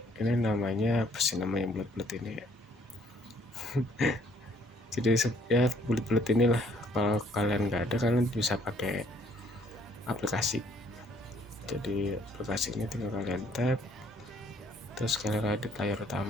Ini namanya apa sih namanya, bulat-bulat ini ya. Jadi ya bulat-bulat inilah. Kalau kalian nggak ada, kalian bisa pakai aplikasi. Jadi aplikasi ini tinggal kalian tap, terus kalian ada layar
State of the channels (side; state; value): both; normal; correlation 0.64